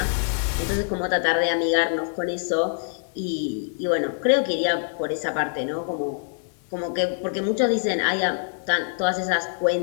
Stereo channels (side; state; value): right; silent; digital silence